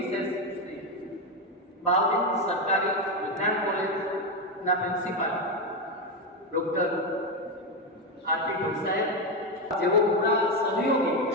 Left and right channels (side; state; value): both; normal; correlation 0.09